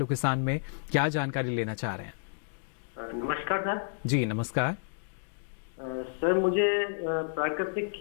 किसान में, क्या जानकारी लेना चाह रहे हैं? नमस्कार सर। जी नमस्कार सर, मुझे प्राकृतिक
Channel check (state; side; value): silent; right; digital silence